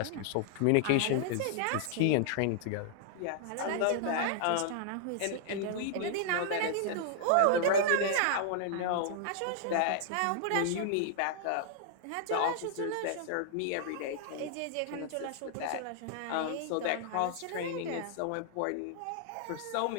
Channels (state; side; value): different; both; correlation -0.01